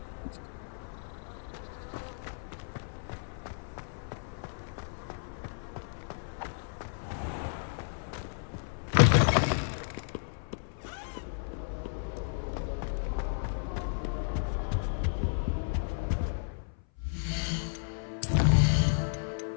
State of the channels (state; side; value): silent; right; 56 dB below the other